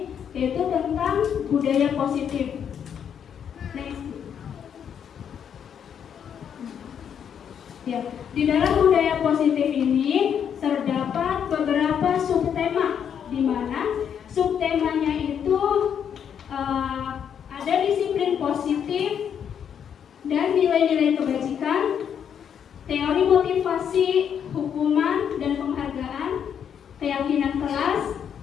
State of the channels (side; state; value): right; quieter; 8.2 dB